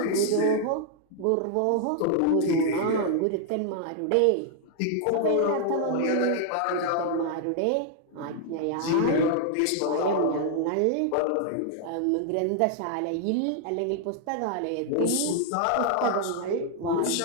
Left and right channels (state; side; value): different; both; correlation 0.00